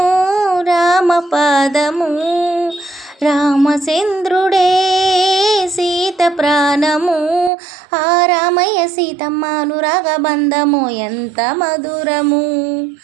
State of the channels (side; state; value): left; drops out; at 7.5 s